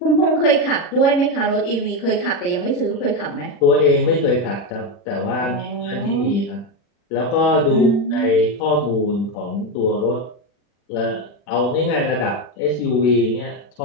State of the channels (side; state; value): right; late; 40 ms